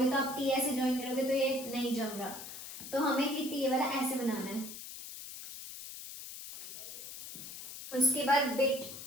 तो आप टी ऐसे ज्वाइन करोगे तो ये नहीं जम रहा। तो हमें हिट ये वाला ऐसे बनाना है। उसके बाद बिट,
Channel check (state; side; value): noise; left; hiss, 11 dB below the sound